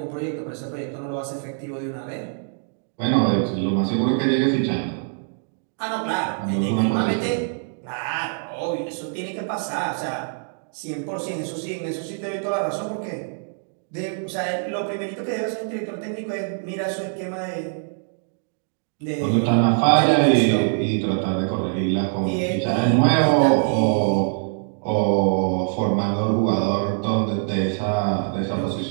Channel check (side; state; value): left; silent; digital silence